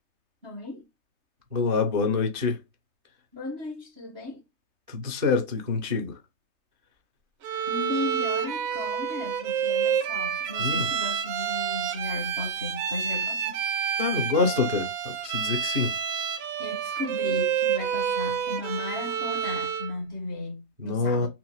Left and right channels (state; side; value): late; left; 3.2 ms